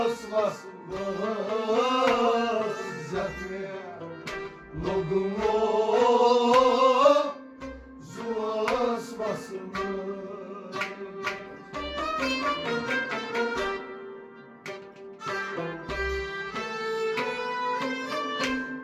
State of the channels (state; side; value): identical; both; correlation 1.00